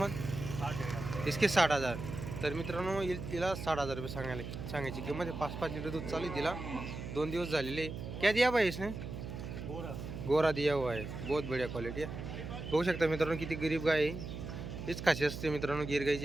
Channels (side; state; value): right; noise; hum, 7 dB below the sound